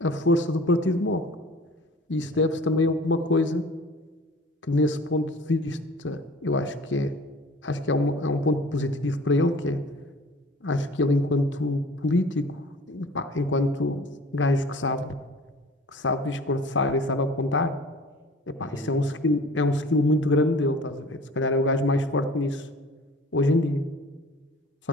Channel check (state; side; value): normal; both; correlation 0.45